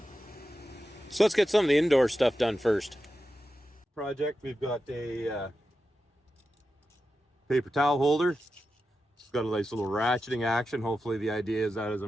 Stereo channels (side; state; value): both; normal; correlation 0.91